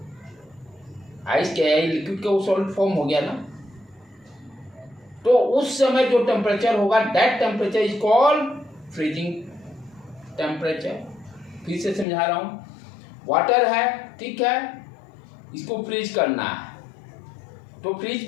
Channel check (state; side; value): drops out; right; at 12.1 s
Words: आइस के लिक्विड का वो सॉलिड फॉर्म हो गया ना, तो उस समय जो टेम्परेचर होगा, that temperature is called freezing temperature. फिर से समझा रहा हूं, वाटर है, ठीक है, इसको फ्रीज करना है, तो